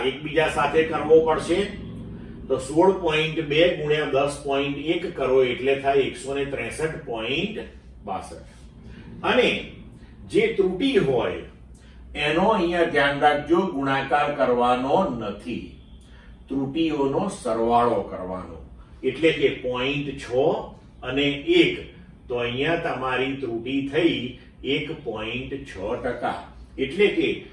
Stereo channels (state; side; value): identical; both; correlation 1.00